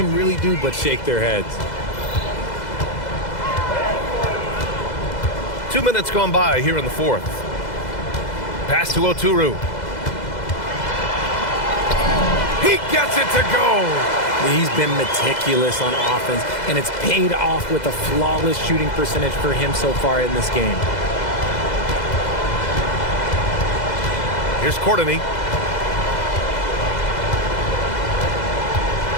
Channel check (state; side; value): late; right; 2.0 ms